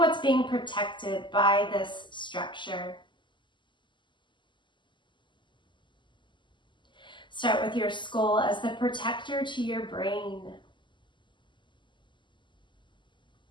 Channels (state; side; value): late; right; 0.23 ms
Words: being protected by this structure. Start with your skull as the protector to your brain.